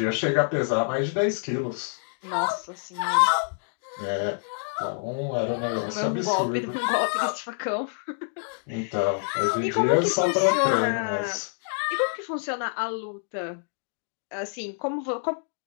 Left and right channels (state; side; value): silent; right; digital silence